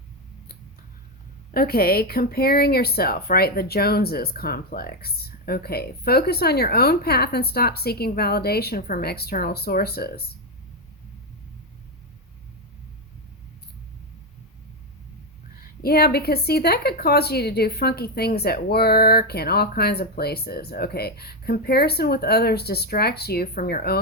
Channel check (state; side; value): normal; both; correlation 0.07